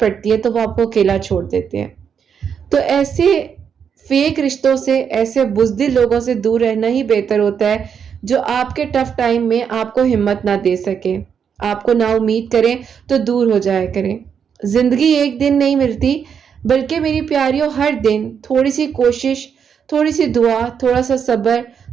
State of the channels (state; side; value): quieter; left; 7.3 dB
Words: ہے تو وہ آپ کو اکیلا چھوڑ دیتے ہیں۔ تو ایسے فیک رشتوں سے، ایسے بزدل لوگوں سے دور رہنا ہی بہتر ہوتا ہے، جو آپ کے ٹف ٹائم میں آپ کو ہمت نہ دے سکے، آپ کو نا امید کریں تو دور ہو جایا کریں۔ زندگی ایک دن نہیں ملتی، بلکہ میری پیاریوں ہر دن تھوڑی سی کوشش، تھوڑی سی دعا، تھوڑا سا صبر،